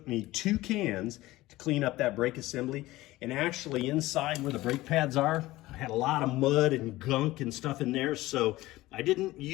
me 2 cans to clean up that brake assembly. And actually inside where the brake pads are, I had a lot of mud and gunk and stuff in there. So I didn't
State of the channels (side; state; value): right; quieter; 17.9 dB